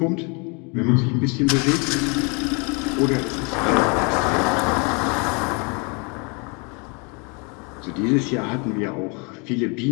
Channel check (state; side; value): quieter; right; 32.6 dB